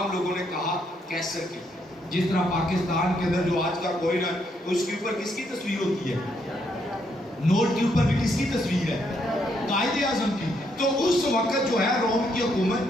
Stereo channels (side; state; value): both; normal; correlation 0.75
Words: لوگوں نے کہا کیسر کی. جس طرح پاکستان کے اندر جو آج کا کوئن ہے اس کے اوپر کس کی تصویر ہوتی ہے, نوٹ کے اوپر بھی کس کی تصویر ہے, قائد اعظم کی. تو اس وقت جو ہے روم کی حکومت